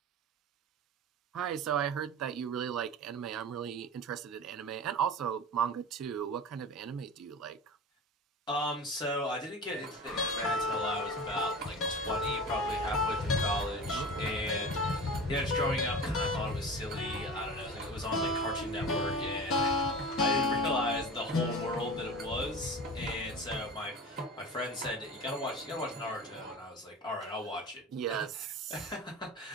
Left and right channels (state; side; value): normal; both; correlation 0.33